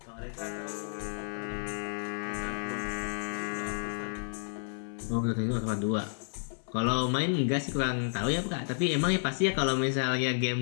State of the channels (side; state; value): right; silent; 57 dB below the other